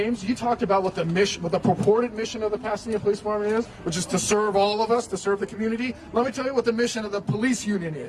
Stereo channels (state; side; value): identical; both; correlation 1.00